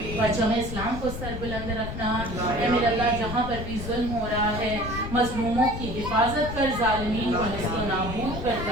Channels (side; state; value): left; noise; rumble, 6 dB below the sound